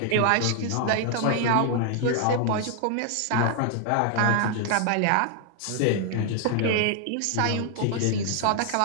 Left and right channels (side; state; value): both; different; correlation 0.00